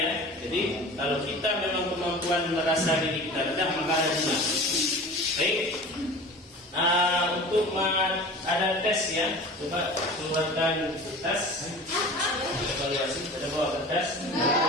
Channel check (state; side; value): normal; both; correlation 0.38